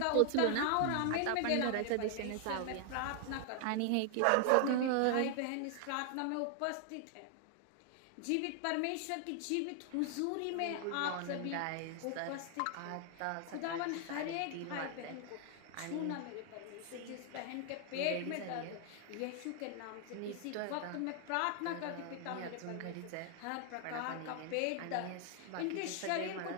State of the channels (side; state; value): both; different; correlation 0.00